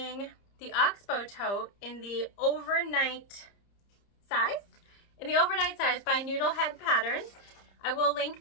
the Oxbow tote in the overnight size, by Noodlehead Patterns. I will link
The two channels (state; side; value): late; right; 30 ms